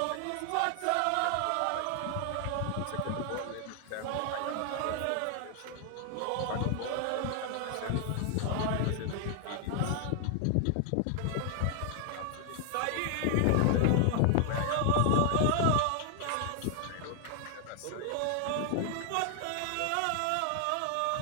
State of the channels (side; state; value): both; different; correlation 0.00